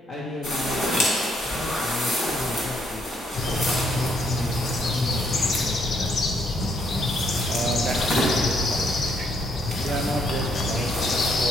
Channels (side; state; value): both; normal; correlation 0.71